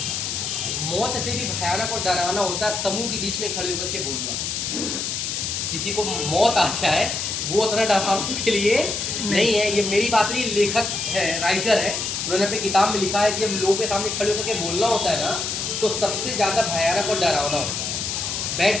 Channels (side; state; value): left; noise; hiss, 2 dB below the sound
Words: मौत से भी भयानक और डरावना होता है समूह के बीच में खड़े होकर के बोलना। किसी को मौत आ जाए वो उतना डरावना उसके लिए नहीं है। ये मेरी बात नहीं, लेखक है, राइटर है, उन्होंने अपनी किताब में लिखा है कि जब लोगों के सामने खड़े होकर के बोलना होता है ना, तो सबसे ज़्यादा भयानक और डरावना होता है।